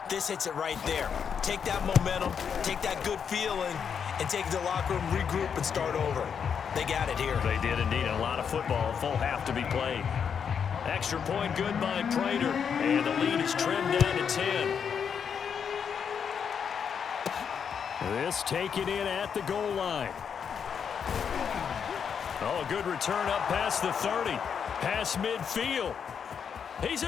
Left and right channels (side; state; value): right; quieter; 7.2 dB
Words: This hits it right there. Take that momentum, take that good feeling, and take it to the locker room, regroup, and start over. They got it here. They did indeed. A lot of football, full half to be played. Extra point good by Prater, and the lead is trimmed down to 10. This taken in at the goal line. Oh, a good return up past the 30. Past midfield. He's